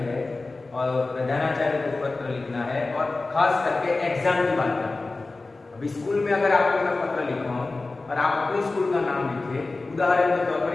और प्रधानाचार्य को पत्र लिखना है, और खास करके एग्जाम की बात करते हैं। अभी स्कूल में अगर आपको मैं पत्र लिखवाऊं और आप अपने स्कूल का नाम लिखे, उदाहरण के तौर पर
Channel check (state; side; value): quieter; right; 3.4 dB